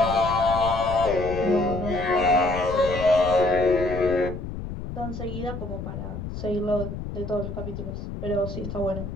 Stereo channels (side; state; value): left; noise; rumble, 7 dB below the sound